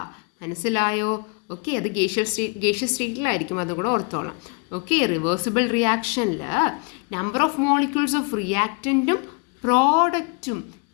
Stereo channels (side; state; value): right; quieter; 34.8 dB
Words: മനസ്സിലായോ? ഓക്കെ, അത് ഗേഷ്യസ് സ്റ്റേറ്റിലായിരിക്കും, അതുകൂടെ ഓർത്തോളാം. ഓക്കെ, റിവേഴ്സിബിൾ റിയാക്ഷനിൽ നമ്പർ ഓഫ് മോളിക്യൂൾസ് ഓഫ് റിയാക്റ്റൻറ്റും പ്രോഡക്റ്റും